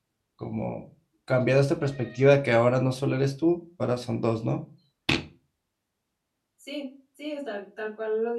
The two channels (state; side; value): identical; both; correlation 1.00